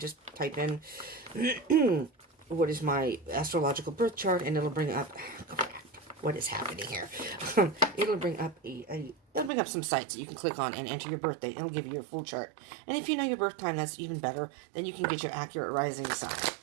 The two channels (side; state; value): left; drops out; at 9.5 s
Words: type in what is my astrological birth chart, and it'll bring up what is happening here. It'll bring up it'll bring up some sites that you can click on and enter your birth date. It'll give you your full chart. And if you know your birth time, that's even better. Then you can get your accurate rising sign.